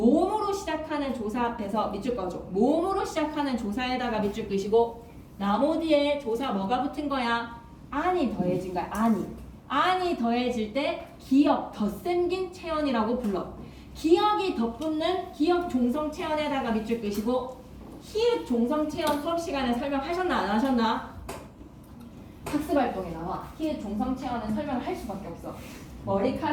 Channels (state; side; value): identical; both; correlation 1.00